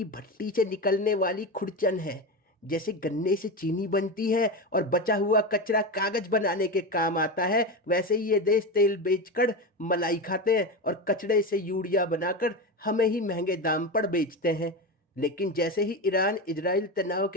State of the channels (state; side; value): normal; both; correlation 0.19